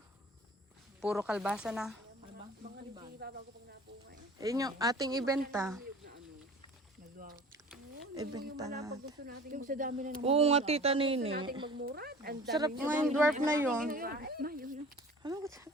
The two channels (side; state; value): both; normal; correlation 0.43